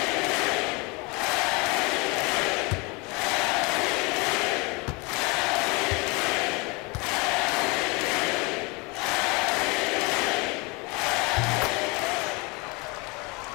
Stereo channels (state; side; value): quieter; right; 27.4 dB